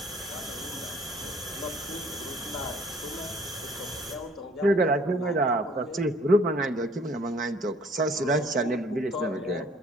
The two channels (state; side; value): normal; both; correlation 0.57